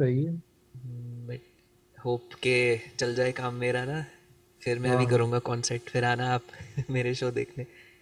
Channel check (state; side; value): identical; both; correlation 1.00